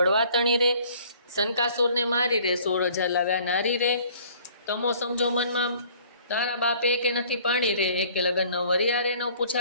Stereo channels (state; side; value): inverted; both; correlation -0.55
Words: તણી રે, શનકાસુરને મારી રે, 16,000 લાવ્યા નારી રે, તમો સમજો મનમાં તારા બાપે એકે નથી પાણી રે, એકે લગન ન વર્યા રે, ન